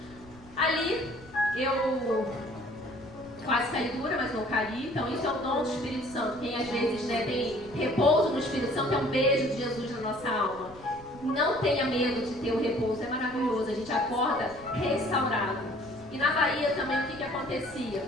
Ali, eu quase caí dura, mas não caí. Então, isso é o dom do Espírito Santo. Quem às vezes tem repouso no Espírito Santo é um beijo de Jesus na nossa alma. Não tenha medo de ter o repouso, é maravilhoso. A gente acorda restaurado. E na Bahia também, o que acontecia?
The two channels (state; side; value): noise; left; rumble, 22 dB below the sound